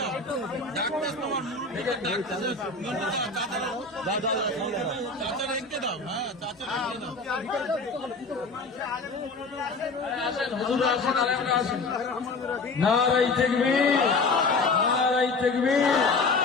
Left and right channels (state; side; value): quieter; right; 3.7 dB